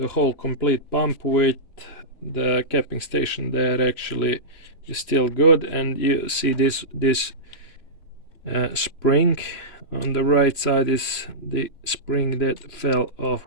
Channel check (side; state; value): right; late; 2.9 ms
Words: whole complete pump with the capping station there actually is still good, and you see this spring on the right side is the spring that fell off